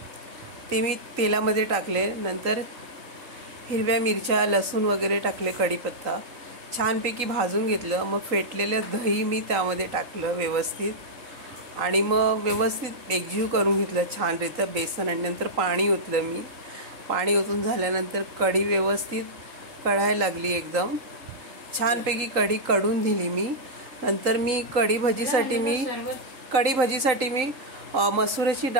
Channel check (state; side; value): late; left; 3.9 ms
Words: ते मी तेलामध्ये टाकले। नंतर हिरव्या मिरच्या, लसूण वगैरे टाकले, कढीपत्ता छानपैकी भाजून घेतलं। मग फेटलेलं दही मी त्यामध्ये टाकलं व्यवस्थित आणि मग व्यवस्थित एकजीव करून घेतलं छानरीत्या बेसन। आणि नंतर पाणी ओतलं मी। पाणी ओतून झाल्यानंतर कढी व्यवस्थित कढायला लागली, एकदम छानपैकी कढी कढून दिली मी। नंतर मी कढी भाजीसाठी मी मसुराची